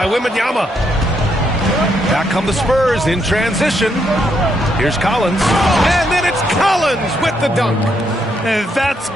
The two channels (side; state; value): both; normal; correlation 0.76